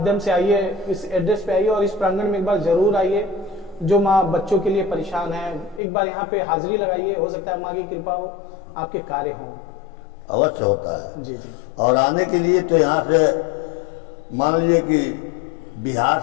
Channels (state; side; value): drops out; right; at 5.8 s